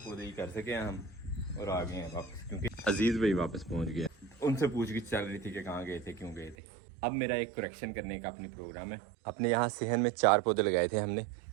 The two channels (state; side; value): drops out; left; at 6.6 s